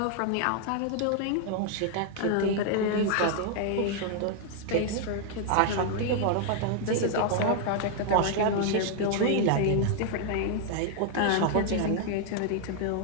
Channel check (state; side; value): different; both; correlation 0.00